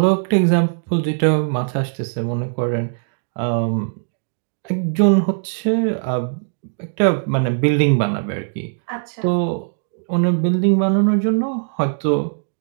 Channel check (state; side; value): silent; left; digital silence